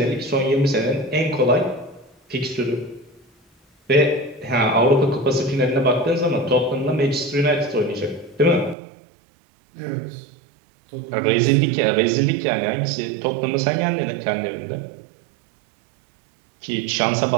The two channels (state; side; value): drops out; left; at 8.8 s